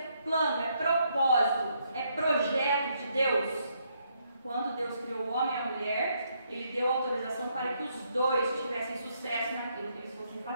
plano, é propósito, é projeto de Deus. Quando Deus criou o homem e a mulher, Ele deu autorização para que os dois tivessem sucesso naquilo que eles fossem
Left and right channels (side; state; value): both; inverted; correlation -0.74